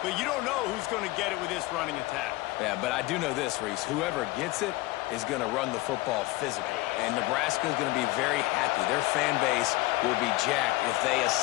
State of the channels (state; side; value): quieter; right; 19.4 dB